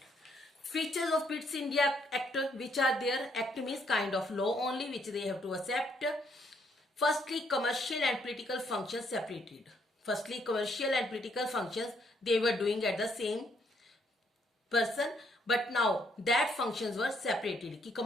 Features of Pitt's India Act, which are there. Act means kind of law only, which they have to accept. Firstly, commercial and political functions separated. Firstly, commercial and political functions they were doing at the same person, but now that functions were separated. कि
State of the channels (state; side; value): normal; both; correlation 0.71